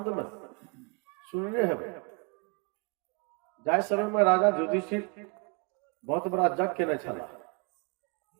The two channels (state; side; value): quieter; left; 32.8 dB